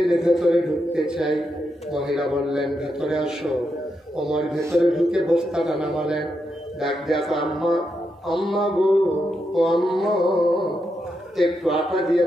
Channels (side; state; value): both; normal; correlation 0.84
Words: ভেতরে ঢুকতে চাই। মহিলা বললেন, ভেতরে আসো। ওমর ভেতরে ঢুকে বস্তাটা নামালেন। ডাক দেখো, আম্মা, আম্মা গো, ও আম্মা, একটু আটা দিয়ে